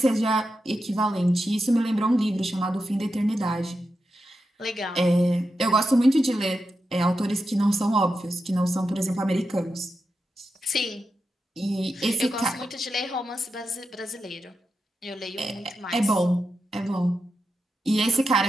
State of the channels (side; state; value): both; normal; correlation 0.88